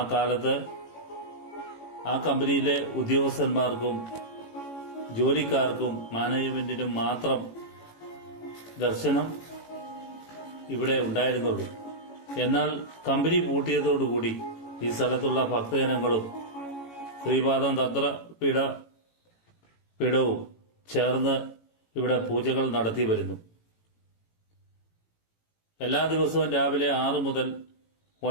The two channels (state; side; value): late; right; 18 ms